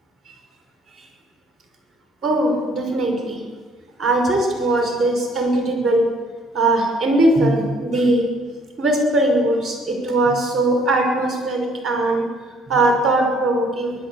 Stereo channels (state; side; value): normal; both; correlation 0.62